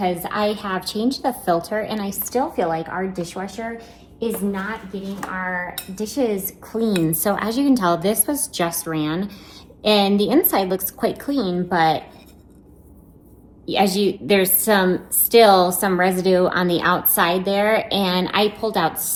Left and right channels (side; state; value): both; identical; correlation 1.00